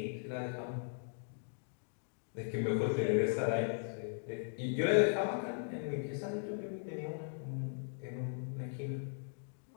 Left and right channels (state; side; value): silent; right; digital silence